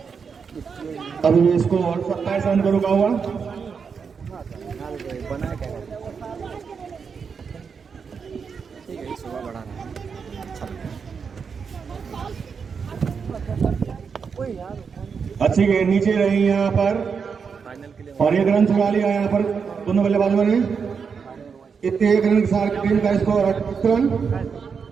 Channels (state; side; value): quieter; left; 6.0 dB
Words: अभी भी स्कोर 27 रन पर रुका हुआ। बना क्या ठीक है, सुबह बढ़ा रहा है। अच्छी गेंद नीचे रही यहाँ पर और 1 रन चुरा लिया यहाँ पर दोनों बल्लेबाजों ने। इतने 1 रन के साथ टीम का स्कोर 28 रन,